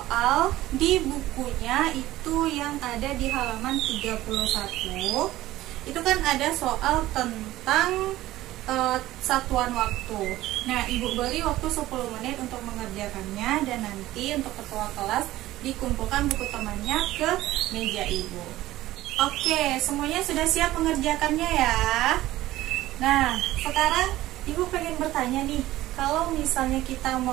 di bukunya itu yang ada di halaman 31. Itu kan ada soal tentang satuan waktu. Nah, Ibu beri waktu 10 menit untuk mengerjakannya dan nanti untuk ketua kelas dikumpulkan buku temannya ke meja Ibu. Oke, semuanya sudah siap mengerjakannya ya. Nah, sekarang Ibu pengen bertanya nih, kalau misalnya kita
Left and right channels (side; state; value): left; quieter; 15.8 dB